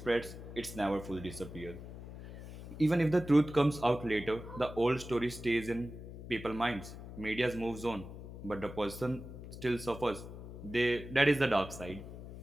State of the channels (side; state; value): left; noise; hum, 12 dB below the sound